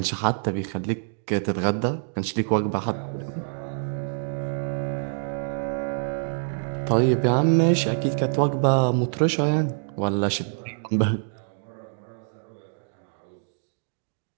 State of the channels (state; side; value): silent; left; digital silence